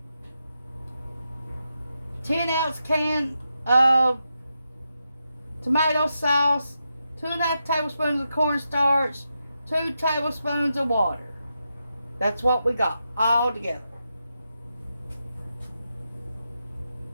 10-ounce can of tomato sauce, 2.5 tablespoons of cornstarch, 2 tablespoons of water. That's what we got all together.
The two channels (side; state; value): both; inverted; correlation -0.86